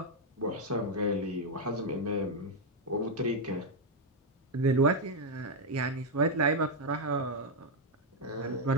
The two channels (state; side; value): normal; both; correlation 0.01